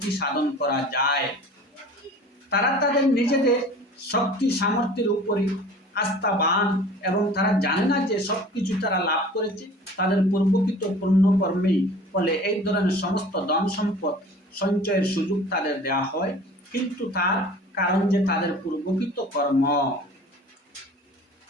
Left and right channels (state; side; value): normal; both; correlation 0.44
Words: সাধন করা যায়। তারা তাদের নিজেদের শক্তি সামর্থ্যের উপরে আস্থাবান এবং তারা জানে না যে সবকিছু তারা লাভ করেছে তাদের পূর্বকৃত পুণ্যকর্মেই ফলে এই ধরনের সমস্ত ধন সম্পদ সঞ্চয়ের সুযোগ তাদের দেওয়া হয়, কিন্তু তার কারণ যে তাদের পূর্বকৃত কর্ম।